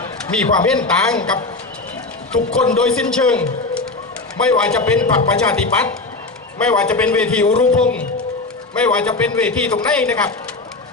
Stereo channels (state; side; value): quieter; right; 3.4 dB